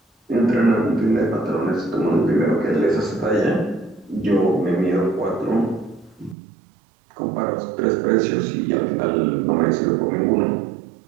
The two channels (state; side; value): drops out; left; at 6.4 s